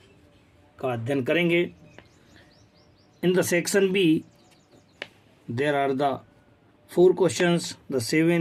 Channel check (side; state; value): both; identical; correlation 1.00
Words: का अध्ययन करेंगे। In the section B there are the 4 questions, the